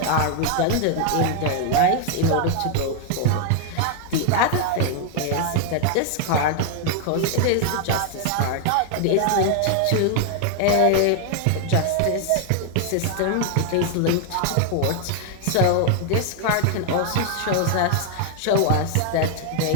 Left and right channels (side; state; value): both; different; correlation 0.00